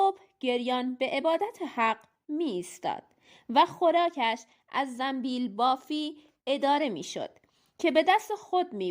گریان به عبادت حق می ایستاد و خوراکش از زنبیل بافی اداره می شد که به دست خود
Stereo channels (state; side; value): identical; both; correlation 1.00